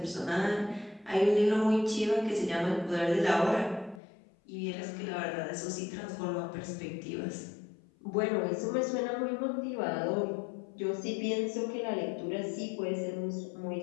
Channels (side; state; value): right; drops out; at 4.0 s